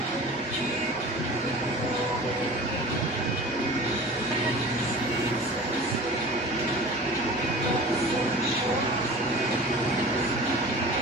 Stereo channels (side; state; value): both; normal; correlation 0.39